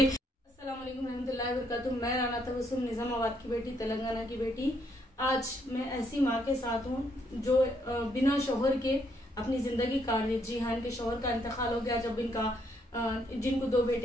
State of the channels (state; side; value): normal; both; correlation 0.72